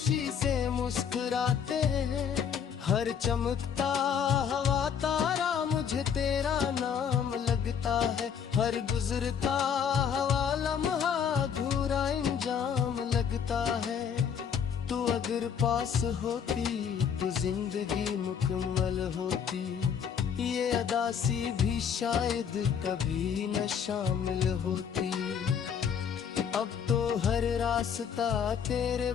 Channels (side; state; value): right; quieter; 7.5 dB